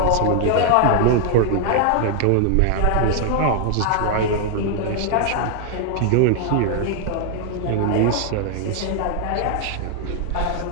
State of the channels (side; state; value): both; different; correlation 0.00